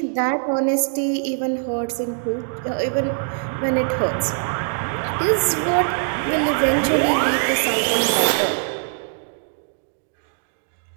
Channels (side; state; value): left; silent; digital silence